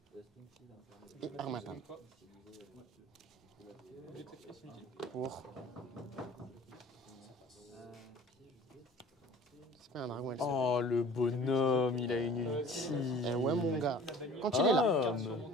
Et Armatan. Pour. C'est pas un dragon et le sombre. Oh, le bonhomme, il a une ulti. Eh ouais, mon gars. Quand il est là, Ah,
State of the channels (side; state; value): both; normal; correlation 0.46